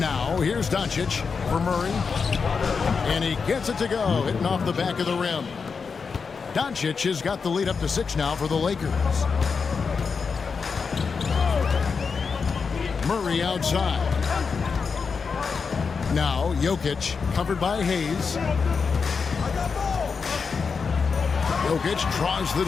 here's Doncic for Murray. And he gets it to go, hitting off the back of the rim. Doncic has got the lead up to 6 now for the Lakers. Murray outside. Now Jokic covered by Hayes. Jokic draws the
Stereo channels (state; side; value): quieter; right; 5.4 dB